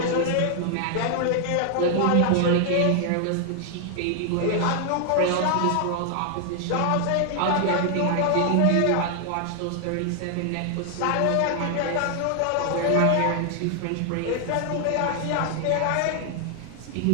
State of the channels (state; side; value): different; both; correlation 0.00